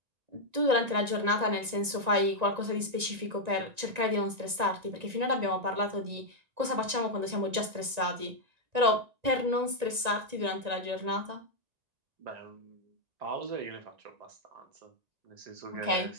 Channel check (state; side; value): late; left; 1.9 ms